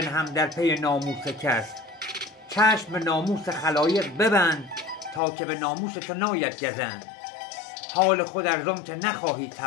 در پی ناموس کس. چشم به ناموس خلایق ببند، تا که به ناموس تو ناید گزند. حال خود ارزم که نخواهی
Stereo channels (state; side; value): drops out; right; at 5.2 s